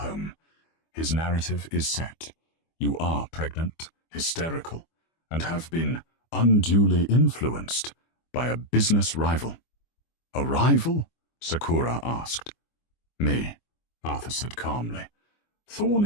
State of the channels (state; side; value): late; right; 24 ms